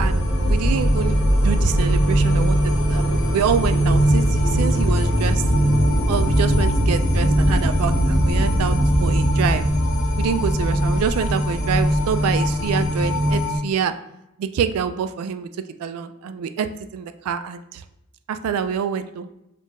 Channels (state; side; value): normal; both; correlation 0.71